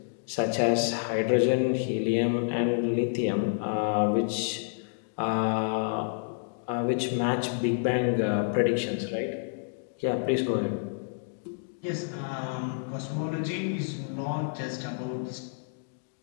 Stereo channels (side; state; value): right; silent; digital silence